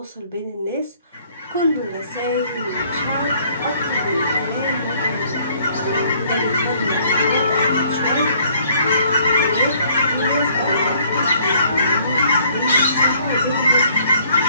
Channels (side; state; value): both; inverted; correlation -0.62